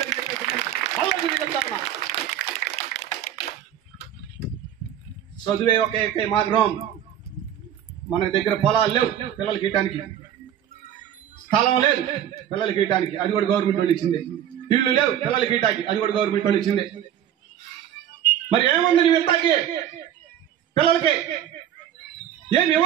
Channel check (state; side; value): quieter; left; 10.4 dB